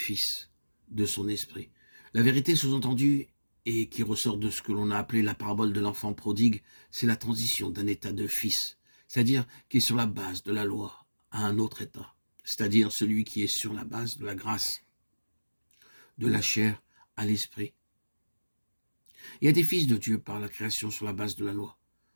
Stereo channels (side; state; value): both; inverted; correlation -1.00